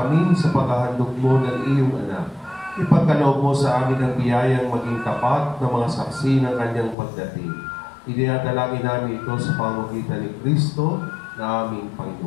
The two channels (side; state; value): right; drops out; at 7.0 s